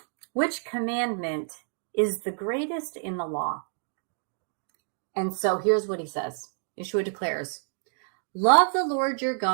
"which commandment is the greatest in the law?" And so here's what he says. Yeshua declares, "Love the Lord your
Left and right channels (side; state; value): left; silent; digital silence